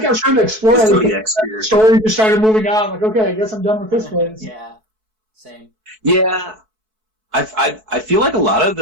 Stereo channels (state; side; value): late; left; 4.6 ms